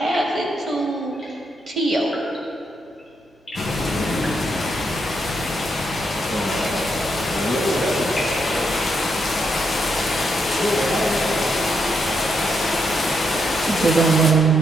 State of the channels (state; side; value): normal; both; correlation 0.79